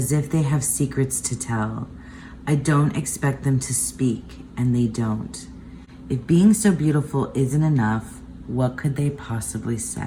if they have secrets to tell. I don't expect them to speak, and they don't. If being so beautiful isn't enough, what could they possibly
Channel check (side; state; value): both; identical; correlation 1.00